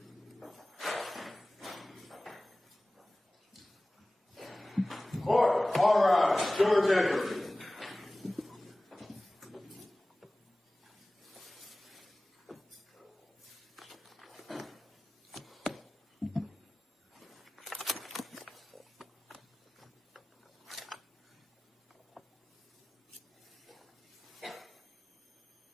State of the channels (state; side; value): normal; both; correlation 0.98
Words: Court, all rise. Jurors enter.